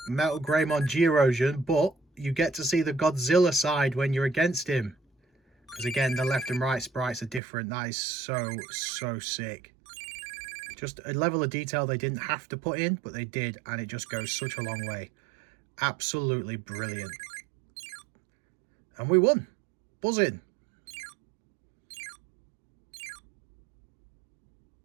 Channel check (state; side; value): drops out; left; at 7.4 s